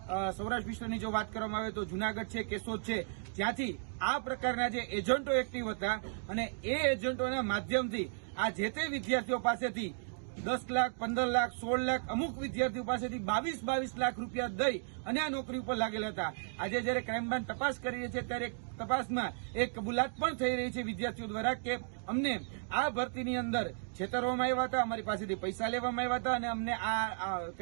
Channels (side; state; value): left; silent; digital silence